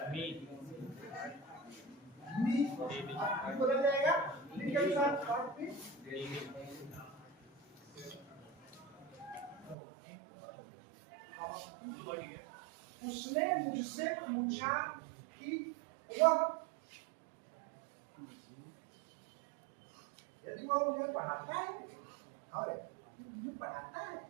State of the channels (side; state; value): left; drops out; at 9.8 s